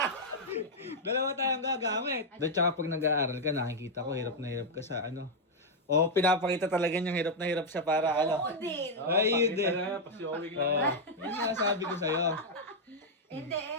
Dalawa tayong gagamit. At saka pag nag-aaral ka, nakikita ko, hirap na hirap ka sa ano. O, pinapakita talaga niyang hirap na hirap siya para ano. Oo din. Ay, yun din. Pasyowing Oo, lang. yun nga sabi ko sa'yo. Hindi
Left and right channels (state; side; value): normal; both; correlation -0.02